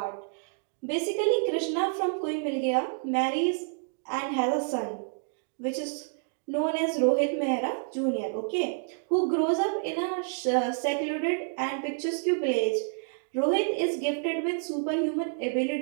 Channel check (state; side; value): silent; left; 59 dB below the other